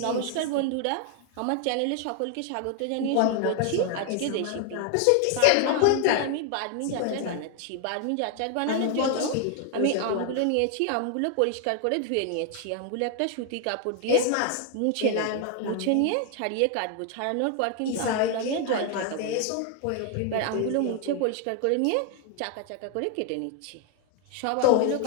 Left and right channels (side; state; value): both; different; correlation 0.00